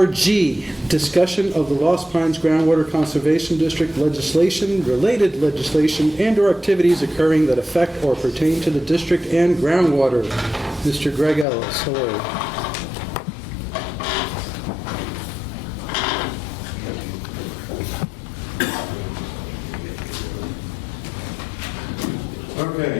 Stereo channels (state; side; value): drops out; right; at 11.5 s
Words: discussion of the Lost Pines Groundwater Conservation District legislation, related legislation, and/or activities occurring that affect or pertain to the district and groundwater. Mr. Greg Ellis, hello.